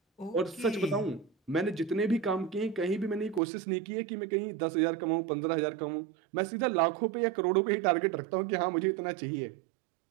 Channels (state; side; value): drops out; left; at 3.4 s